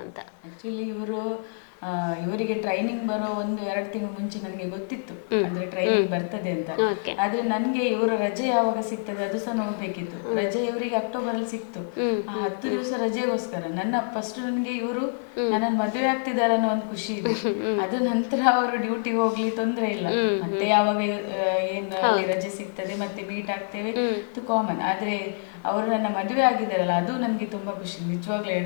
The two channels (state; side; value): silent; right; 56 dB below the other